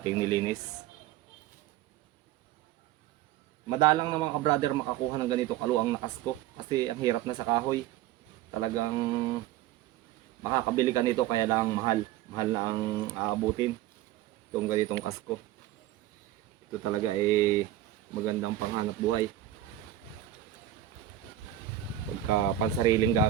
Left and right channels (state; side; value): quieter; left; 12.9 dB